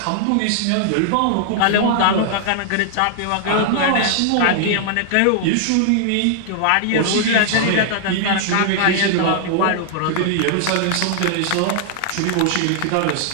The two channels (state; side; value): different; both; correlation 0.00